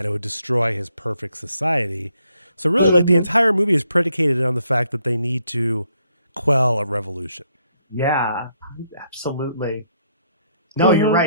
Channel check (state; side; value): inverted; both; correlation -0.74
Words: it would destroy his perfect society. So really, like, the entire movie is predicated on the fact that they need to quell a revolution. Yeah, absolutely. No, you're